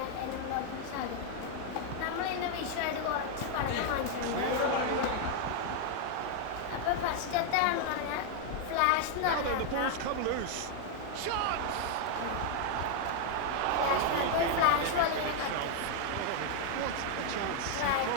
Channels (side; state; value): both; different; correlation 0.00